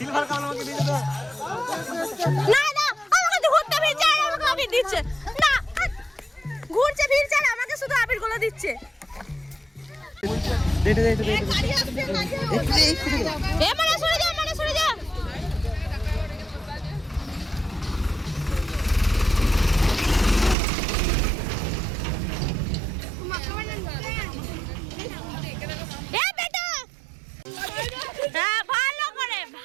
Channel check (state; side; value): drops out; left; at 20.6 s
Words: কালার আমাকে দিয়ে দাও। না না, আমাকে ঘুরতে ফিরছে আর আমাকে আবির দিচ্ছে। না ঘুরছে ফিরছে আর আমাকে শুধু আবির গুলো দিচ্ছে। দে দে দে দে। এ মানে সরে যা, মানে সরে যা। এ বেটা, হ্যাঁ ভালো করে